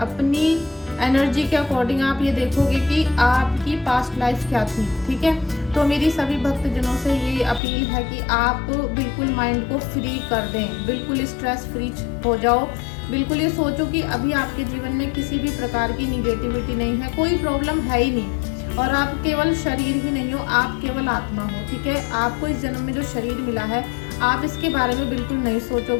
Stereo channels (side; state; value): right; drops out; at 7.6 s